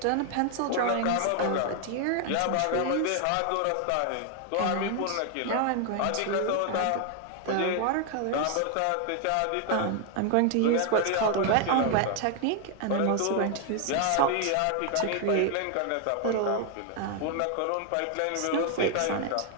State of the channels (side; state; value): both; different; correlation 0.00